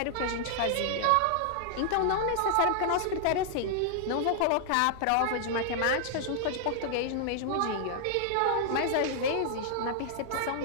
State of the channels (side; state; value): both; different; correlation -0.01